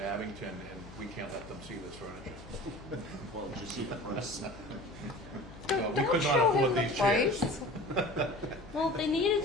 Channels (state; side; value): noise; left; hum, 18 dB below the sound